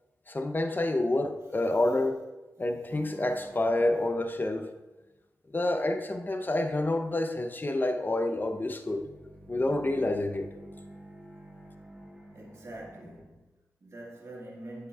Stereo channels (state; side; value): normal; both; correlation 0.92